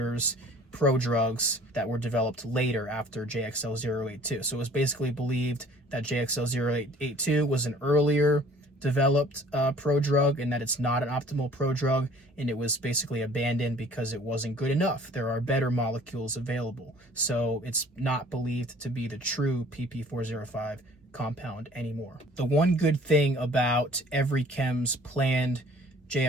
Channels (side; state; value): both; normal; correlation 0.52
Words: prodrugs that were developed later after JXL082. So it was basically believed that JXL082 was an earlier developed prodrug, and that it's not an optimal prodrug, and it was basically abandoned because it wasn't good enough. There are better molecules available. So it's not believed to be the true PP405 compound anymore. The one good thing about EveryChem's planned